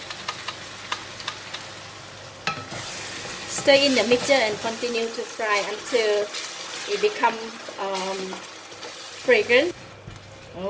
Stir in the mixture and continue to fry until it becomes fragrant.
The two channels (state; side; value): identical; both; correlation 1.00